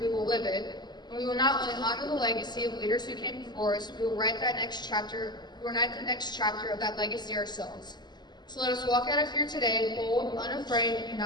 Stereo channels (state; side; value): late; right; 0.21 ms